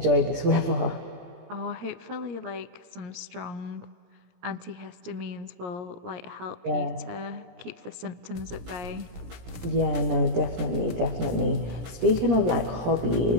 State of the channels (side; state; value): left; late; 17 ms